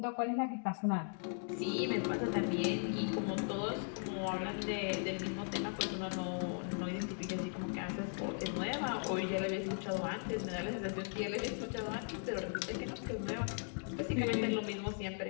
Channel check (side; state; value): right; silent; 52 dB below the other